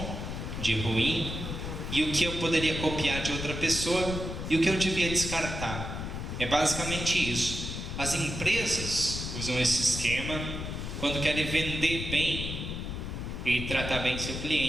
de ruim, e o que eu poderia copiar de outra pessoa e o que eu devia descartar. É basicamente isso. As empresas usam esse esquema quando querem vender bem e tratar bem seu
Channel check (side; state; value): left; noise; rumble, 5 dB below the sound